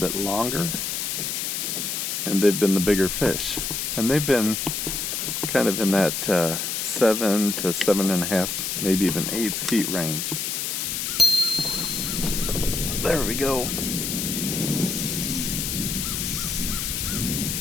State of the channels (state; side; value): noise; left; hiss, 2 dB below the sound